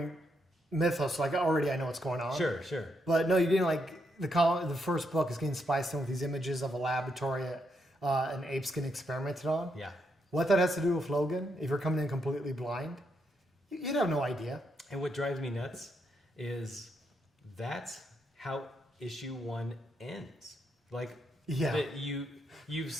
mythos, like already I know what's going on. Sure. But no, you're getting like the first book is getting spiced in with these images of a laboratory an ape's getting experimented on. Yeah. What that has to do with Logan, if you're coming in completely blind, you'd have no idea. And what drives me nuts is that's how issue 1 ends. Like, you've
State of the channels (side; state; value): both; normal; correlation 0.79